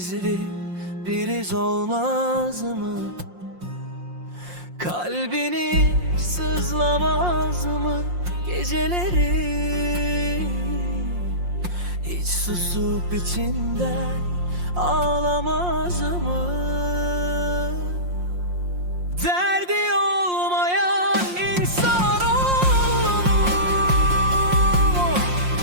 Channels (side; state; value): left; late; 5.6 ms